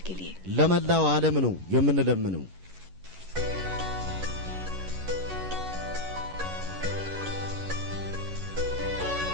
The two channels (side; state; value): left; late; 11 ms